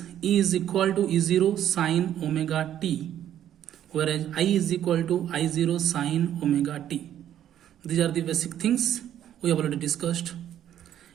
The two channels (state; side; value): quieter; left; 10.9 dB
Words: E is equal to E0 sine omega t, whereas I is equal to I0 sine omega t. These are the basic things we have already discussed